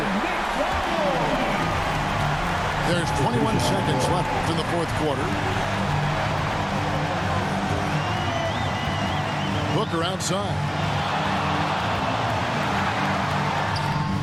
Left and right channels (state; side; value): identical; both; correlation 1.00